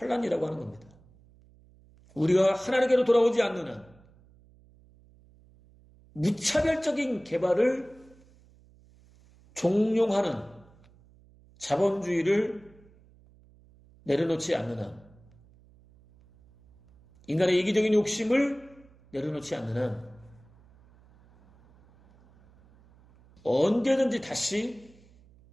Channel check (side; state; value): right; noise; hum, 28 dB below the sound